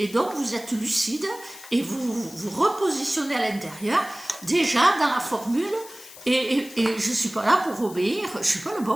donc vous êtes lucide, et vous repositionnez à l'intérieur, déjà dans la formule. Et je ne suis pas là pour obéir, je ne suis pas le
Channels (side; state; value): left; noise; hiss, 17 dB below the sound